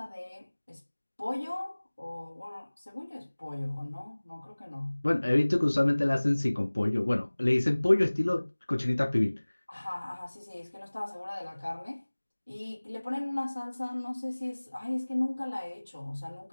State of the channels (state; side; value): inverted; both; correlation -1.00